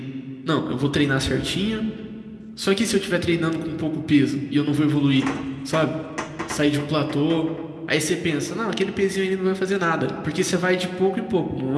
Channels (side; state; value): both; identical; correlation 1.00